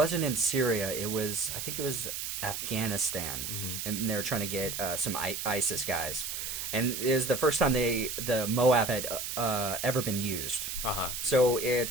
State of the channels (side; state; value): right; noise; hiss, 4 dB below the sound